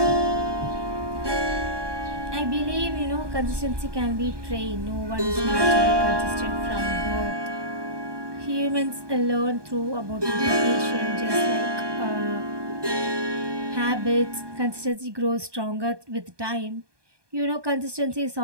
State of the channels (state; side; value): late; left; 1.2 ms